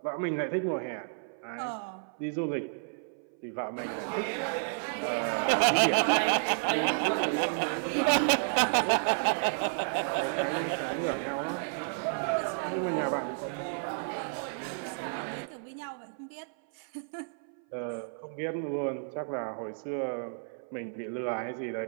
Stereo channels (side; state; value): left; silent; 56 dB below the other